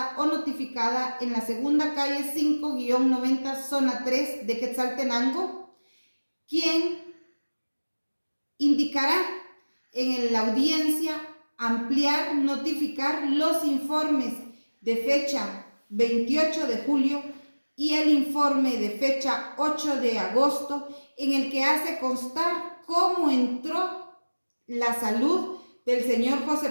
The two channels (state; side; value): inverted; both; correlation -1.00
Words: o notificada en la 2ª calle 5-90, zona 3 de Quetzaltenango, quien indicará en la audiencia ampliar, notificar los informes de fecha 28 de julio y el informe de fecha 8 de agosto en el que hace constar cómo entró la salud del señor José